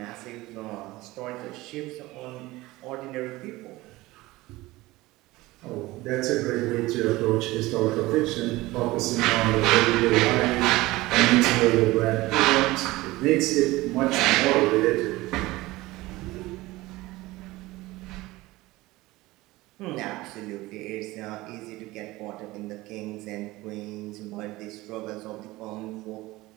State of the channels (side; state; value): left; quieter; 19.4 dB